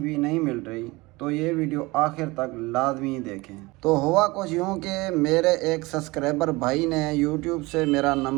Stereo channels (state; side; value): quieter; left; 22.6 dB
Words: नहीं मिल रही तो ये वीडियो आखिर तक लाजमी देखें। तो हुआ कुछ यूँ कि मेरे एक सब्सक्राइबर भाई ने यूट्यूब से मेरा